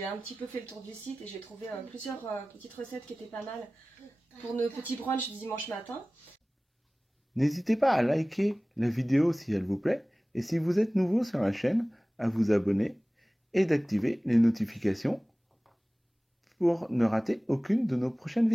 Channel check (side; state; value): both; normal; correlation 0.98